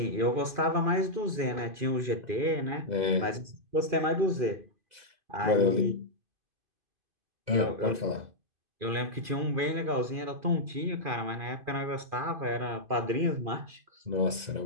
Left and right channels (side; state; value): left; late; 2.4 ms